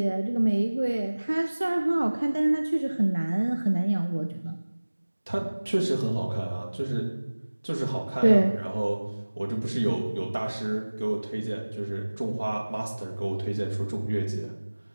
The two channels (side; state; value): both; inverted; correlation -1.00